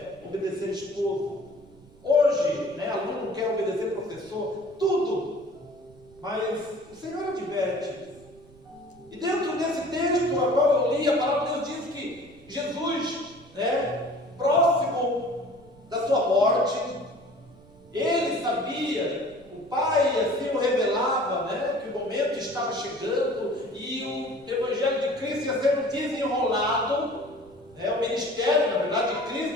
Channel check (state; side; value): noise; right; rumble, 25 dB below the sound